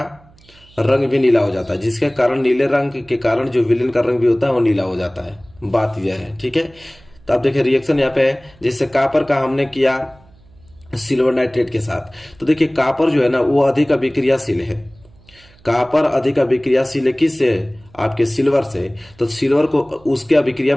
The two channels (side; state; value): right; noise; hum, 28 dB below the sound